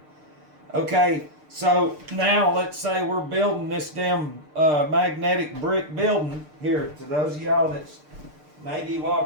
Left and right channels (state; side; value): late; left; 6.6 ms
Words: Okay. So now let's say we're building this damn magnetic brick building here. To those of y'all that's maybe